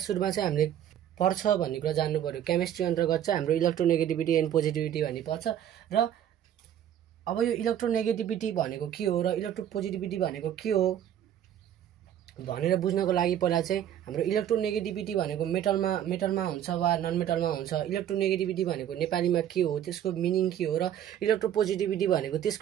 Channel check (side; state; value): left; quieter; 10.5 dB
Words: चाहिँ हामीले पर्छ भन्ने कुरा जान्नु पर्यो। केमिस्ट्री अन्तर्गत चाहिँ हाम्रो इलेक्ट्रोनेगेटिभिटी एन्ड पोजिटिभिटी भन्ने पर्छ। र अब यो इलेक्ट्रोनेगेटिभिटी भनेको के हो र इलेक्ट्रोपोजिटिभिटी भनेको के हो भनेर बुझ्नको लागि पहिला चाहिँ हाम्रो इलेक्ट्रोनेगेटिभिटी भनेको मेटलमा हुन्छ वा नन मेटलमा हुन्छ। इलेक्ट्रोनेगेटिभिटी भनेको नेपालीमा के हो, त्यसको मिनिङ के हो, र इलेक्ट्रोपोजिटिभिटी भनेको